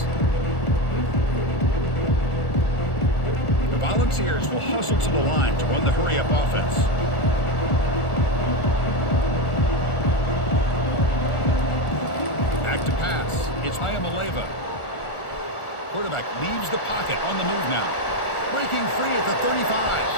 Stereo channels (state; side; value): late; right; 1.4 ms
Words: The Volunteers will hustle to the line to run the hurry-up offense. Back to pass. It's Ayamaleva. Quarterback leaves the pocket on the move now. Breaking free at the